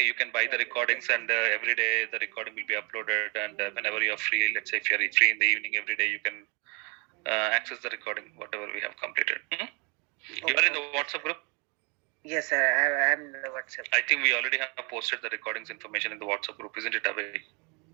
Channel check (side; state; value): left; quieter; 32.0 dB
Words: You can buy the recordings, and every day the recording will be uploaded. And whenever you're free, let's say if you're free in the evening, every day you can access the recording, whatever we have completed. You are in the WhatsApp group? Yes, sir. I'm in the WhatsApp. I think we already have posted the recordings information in the WhatsApp group, isn't it, Abhay?